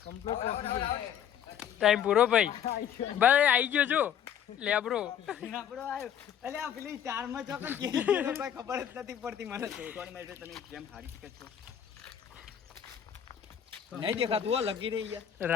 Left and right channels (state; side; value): quieter; right; 9.2 dB